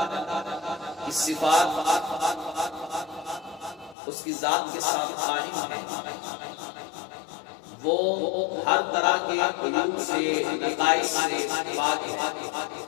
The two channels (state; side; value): drops out; right; at 4.0 s